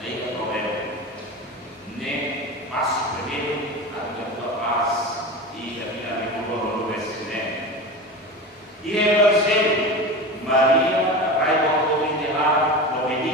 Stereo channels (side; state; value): both; normal; correlation 0.27